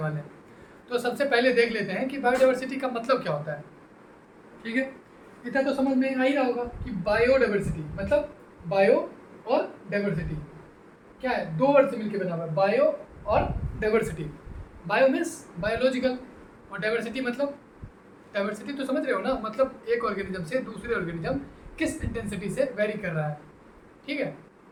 वाले हैं। तो सबसे पहले देख लेते हैं कि बायोडाइवर्सिटी का मतलब क्या होता है, ठीक है। इतना तो समझ में आ ही रहा होगा कि बायोडाइवर्सिटी मतलब बायो और डाइवर्सिटी क्या है, दो वर्ड से मिलकर बना हुआ है, बायो और डाइवर्सिटी। बायो मीन्स बायोलॉजिकल और डाइवर्सिटी मतलब, डाइवर्सिटी तो समझ रहे हो ना, मतलब एक ऑर्गेनिज्म से दूसरे ऑर्गेनिज्म किस इंटेंसिटी से वेरी कर रहा है, ठीक है।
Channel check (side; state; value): both; identical; correlation 1.00